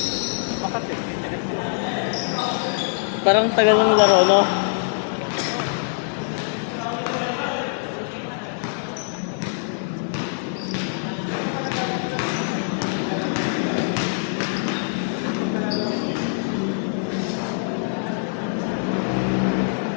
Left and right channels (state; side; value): silent; right; 63 dB below the other